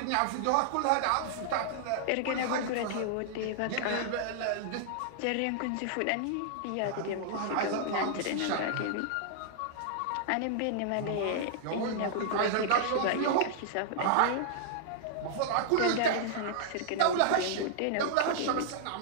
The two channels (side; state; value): both; different; correlation -0.01